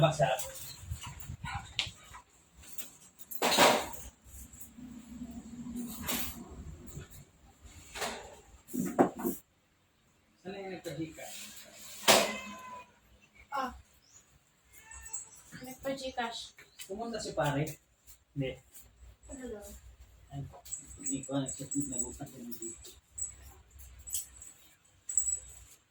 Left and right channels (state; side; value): identical; both; correlation 1.00